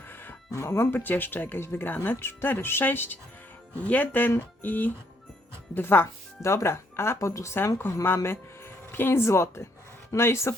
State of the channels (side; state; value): both; normal; correlation 0.70